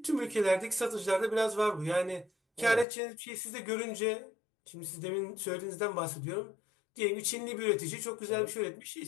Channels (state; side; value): drops out; right; at 2.9 s